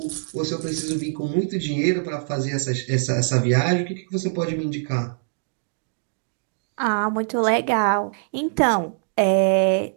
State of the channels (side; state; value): left; silent; digital silence